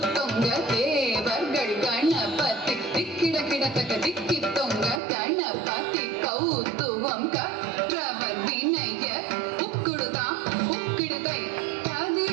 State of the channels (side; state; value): left; drops out; at 5.0 s